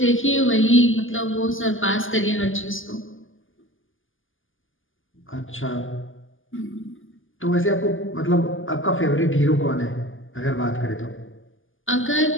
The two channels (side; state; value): right; late; 0.58 ms